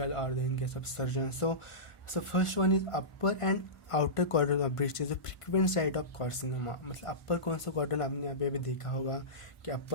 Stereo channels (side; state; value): right; late; 1.5 ms